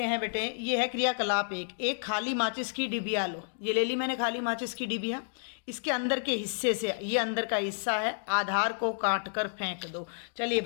हैं बेटे, ये है क्रियाकलाप 1। एक खाली माचिस की डिबिया लो। ये ले ली मैंने खाली माचिस की डिबिया। इसके अंदर के हिस्से से, ये अंदर का हिस्सा है, आधार को काट कर फेंक दो। चलिए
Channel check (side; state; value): right; silent; digital silence